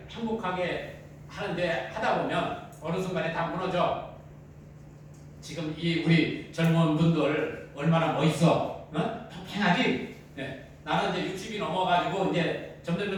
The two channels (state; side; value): identical; both; correlation 1.00